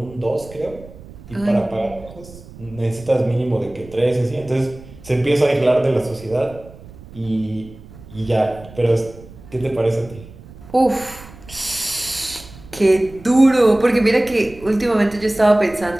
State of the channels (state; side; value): noise; right; rumble, 19 dB below the sound